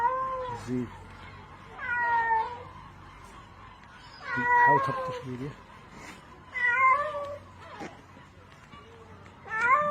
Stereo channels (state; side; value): identical; both; correlation 1.00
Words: زيد. حاول تبطش بيديه.